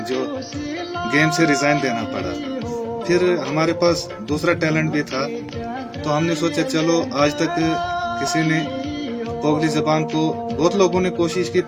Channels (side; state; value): both; identical; correlation 1.00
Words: जो गेम से रिजाइन देना पड़ा। फिर हमारे पास दूसरा टैलेंट भी था, तो हमने सोचा चलो, आज तक किसी ने पोगली जबान को, बहुत लोगों ने कोशिश की